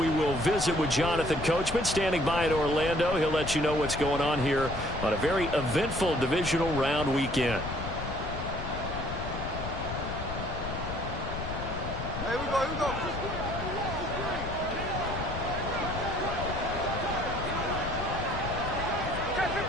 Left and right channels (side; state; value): left; noise; rumble, 6 dB below the sound